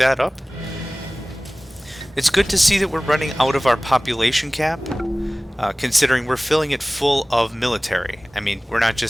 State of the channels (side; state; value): both; normal; correlation 0.98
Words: up. It's good to see that we're running out of our population cap, considering we're filling it full of military. I mean, we're not